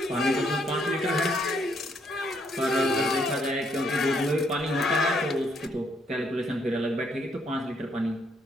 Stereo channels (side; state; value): both; normal; correlation 0.71